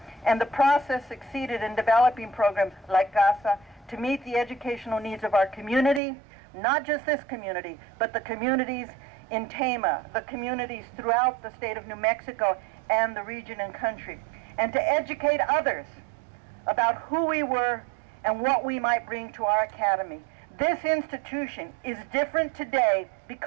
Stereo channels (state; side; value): drops out; left; at 6.0 s